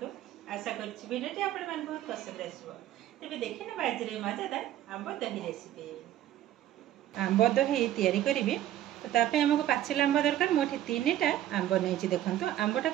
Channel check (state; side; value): quieter; left; 12.6 dB